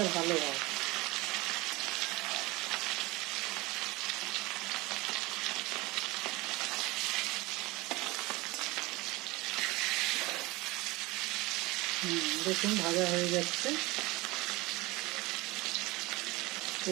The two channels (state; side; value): quieter; left; 22.0 dB